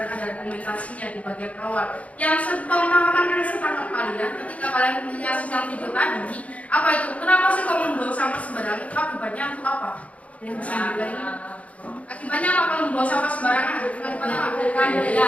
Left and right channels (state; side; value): late; right; 0.066 ms